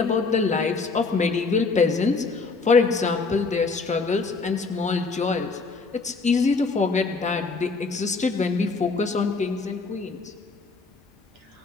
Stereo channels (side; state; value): right; quieter; 4.2 dB